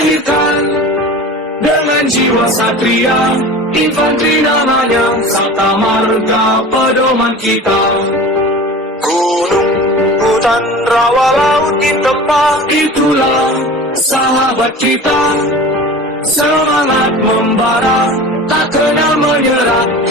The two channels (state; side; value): normal; both; correlation 0.36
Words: dengan jiwa satria, infanteri namanya, Sabta Marga pedoman kita. Gunung, hutan, rawa, laut ditempa, itulah sahabat kita. Semangat membara, tak kenal menyerah,